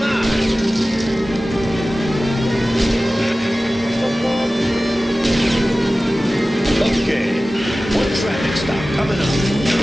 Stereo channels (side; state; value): both; normal; correlation 0.96